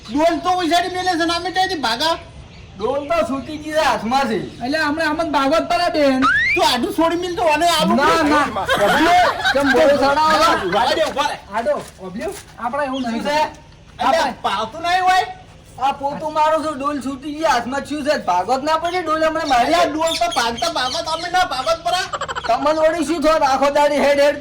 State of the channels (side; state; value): both; identical; correlation 1.00